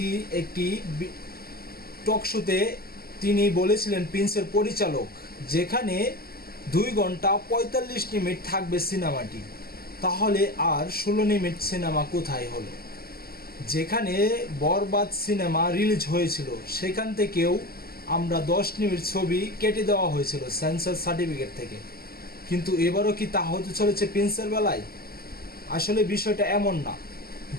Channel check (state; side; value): late; right; 0.45 ms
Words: একটি টক শোতে তিনি বলেছিলেন, প্রিন্সের পরিচালক, যেখানে 2 ঘন্টা 45 মিনিট থাকবে সিনেমাটি, তাহলে আর 16 মিনিট সিনেমা কোথায় হলো? যেখানে বরবাদ সিনেমা রিলিজ হয়েছিল সেখান থেকেও আমরা 10 মিনিট ছবি কেটে দেওয়া হয়েছিল সেন্সর সার্টিফিকেট থেকে। কিন্তু এবারও কি তা হতে চলেছে প্রিন্সের বেলায়? আসলে বিষয়টা এমন না।